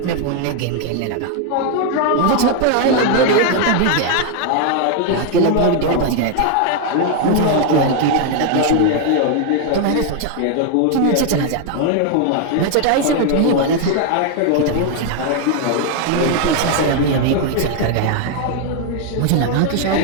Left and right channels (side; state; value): both; different; correlation 0.00